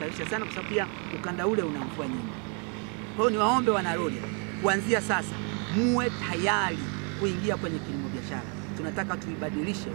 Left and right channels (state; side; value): quieter; left; 37.0 dB